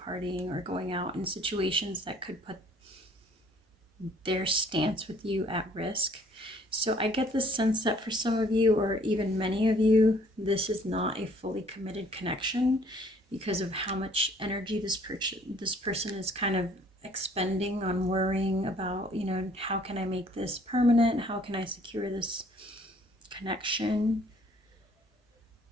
or going out in situations that could put their stance with you at risk. So I get the sense that for some of you, or even many of you, this is not a fully committed connection because of how much energy this person is kind of expending on worrying about, you know, how can I make this permanent? How can I secure this connection?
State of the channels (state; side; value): normal; both; correlation 0.59